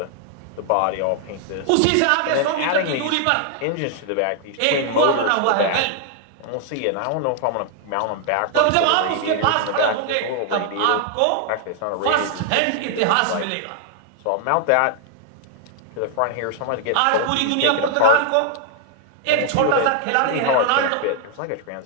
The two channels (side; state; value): both; different; correlation 0.00